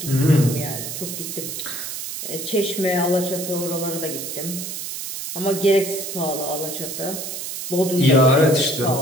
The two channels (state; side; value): noise; right; hiss, 6 dB below the sound